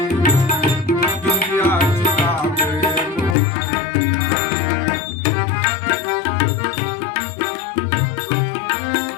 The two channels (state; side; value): drops out; right; at 3.4 s